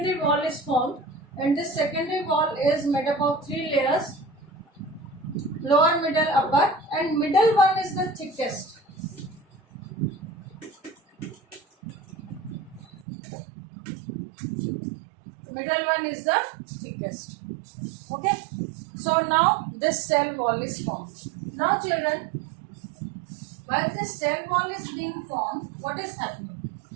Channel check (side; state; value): left; drops out; at 13.1 s